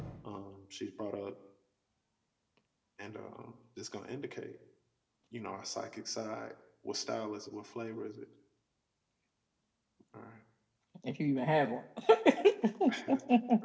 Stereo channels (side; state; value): both; identical; correlation 1.00